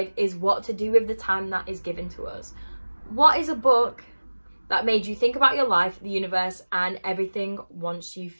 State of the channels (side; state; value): both; inverted; correlation -1.00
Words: is what to do with the time that is given to us. What is a book that made you think about your life, the universe, and everything once you